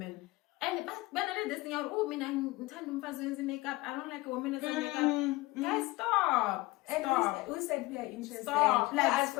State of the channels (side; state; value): right; quieter; 20.5 dB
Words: And but when I did this thing out, I'm makeup. I don't like a woman that's makeup. Guys, stop. And who said we are interested? Stop. Ask for